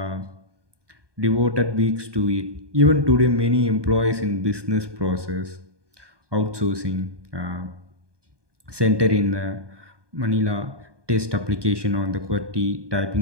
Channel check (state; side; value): late; left; 1.2 ms